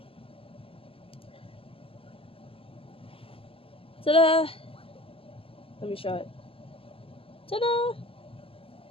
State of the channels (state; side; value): late; right; 0.27 ms